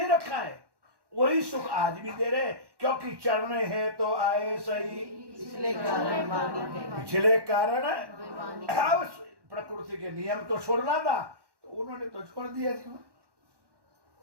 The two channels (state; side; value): late; left; 1.1 ms